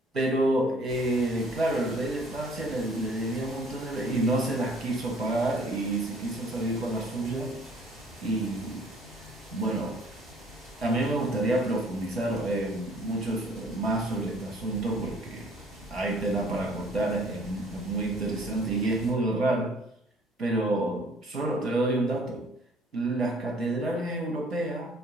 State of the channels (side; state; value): both; normal; correlation 0.57